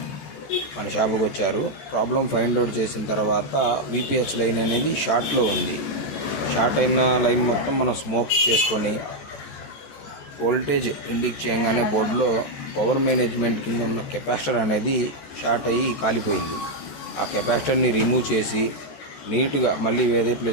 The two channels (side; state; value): right; late; 14 ms